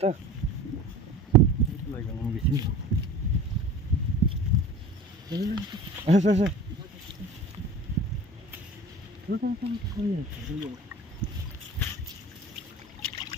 তো বেশি। আচ্ছা আচ্ছা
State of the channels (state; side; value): normal; both; correlation 0.39